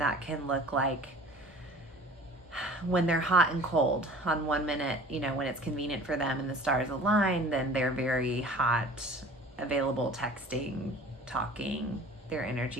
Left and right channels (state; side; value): normal; both; correlation 0.46